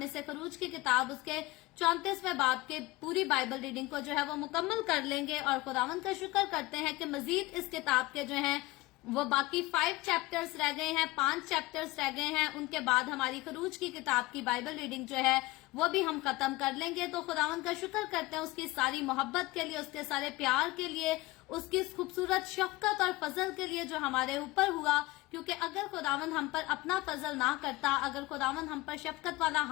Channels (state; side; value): quieter; right; 20.0 dB